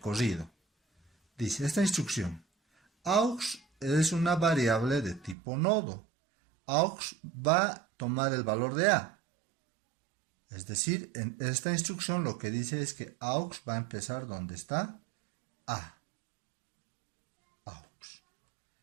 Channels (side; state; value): left; drops out; at 5.4 s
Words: Dice esta instrucción, aux es una variable de tipo nodo. Aux va a tomar el valor de A. Es decir, en esta instrucción lo que dice es que aux va a empezar donde está A.